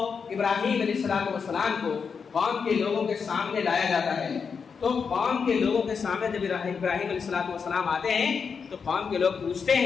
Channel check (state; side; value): quieter; right; 5.9 dB